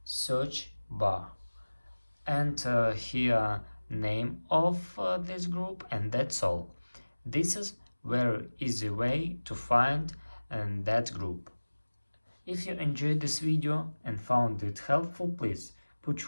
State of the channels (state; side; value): inverted; both; correlation -1.00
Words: search bar and here name of this group, and that's all. This is very easy way to find that group. If you enjoyed this video and found it helpful, please put